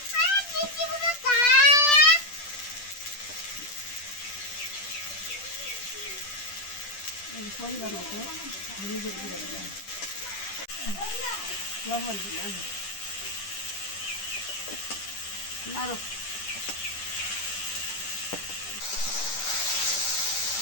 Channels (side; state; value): right; late; 10 ms